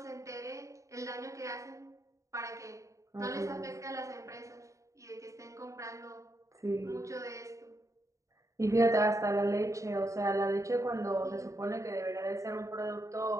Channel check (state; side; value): late; left; 0.15 ms